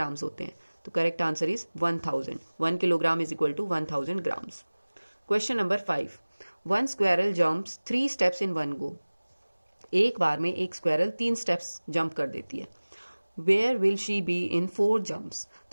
होते हैं? तो correct answer is 1000. 1 kilogram is equal to 1000 grams. Question number 5. 1 squirrel jumps 3 steps in 1 go. एक बार में एक स्क्वेरल 3 स्टेप्स जंप कर देती है. Where will she be in 4 jumps?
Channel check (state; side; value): inverted; both; correlation -1.00